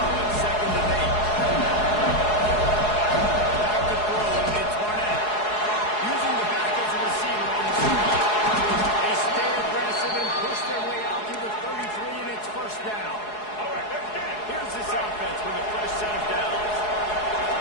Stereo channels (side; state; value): right; late; 4.7 ms